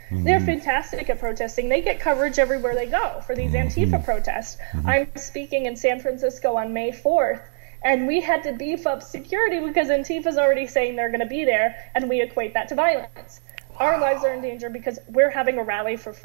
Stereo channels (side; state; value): left; silent; digital silence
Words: They're fantastic at protesting. They get coverage everywhere they go for these Antifa protests. I'm speaking in San Francisco on May 4th, and we had to beef up security because Antifa's already saying they're going to be there, and we equate that to violence. Our lives are in danger because we're having a rally for